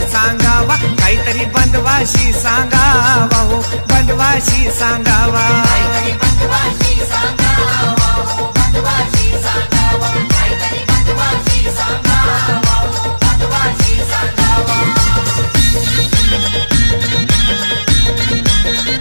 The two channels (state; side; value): inverted; both; correlation -1.00